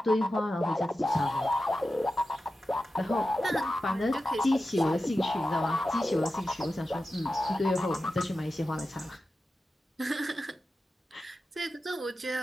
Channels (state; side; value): normal; both; correlation 0.92